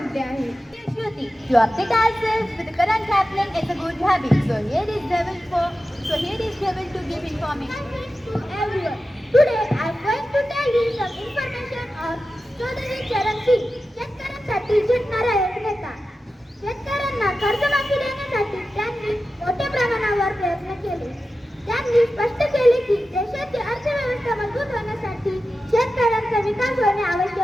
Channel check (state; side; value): normal; both; correlation 0.93